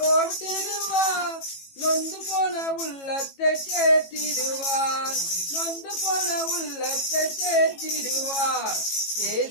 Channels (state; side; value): late; right; 18 ms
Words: ஓட்டிடுவார். நொந்து போன உள்ளத்தை தேற்றிடுவார், நொந்து போன உள்ளத்தை தேற்றிடுவார்.